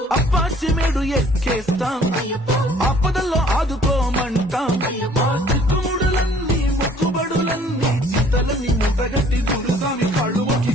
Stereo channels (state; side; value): normal; both; correlation 0.56